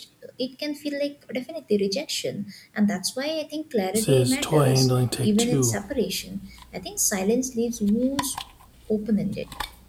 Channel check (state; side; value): identical; both; correlation 1.00